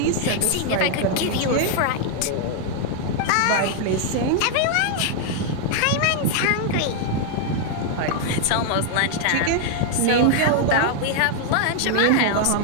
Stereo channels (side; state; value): both; different; correlation 0.00